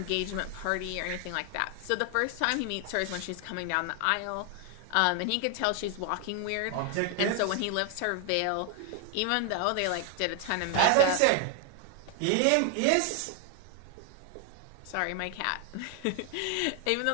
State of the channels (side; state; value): both; different; correlation 0.00